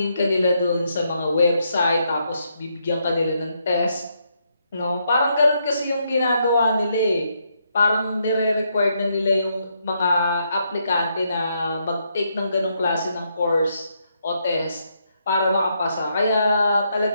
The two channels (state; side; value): inverted; both; correlation -0.77